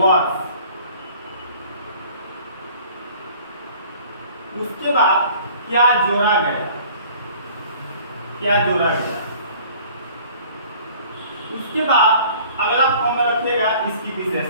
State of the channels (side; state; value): both; inverted; correlation -0.51